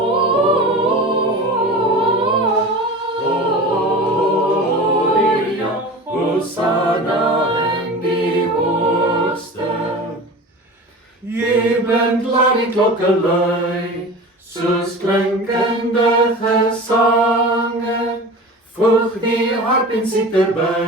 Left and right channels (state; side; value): normal; both; correlation 0.34